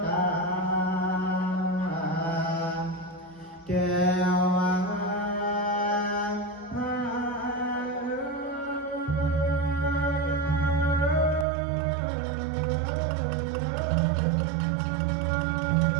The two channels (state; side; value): drops out; left; at 11.5 s